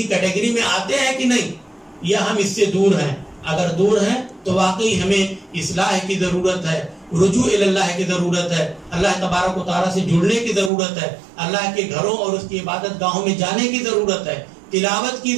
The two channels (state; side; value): drops out; left; at 10.7 s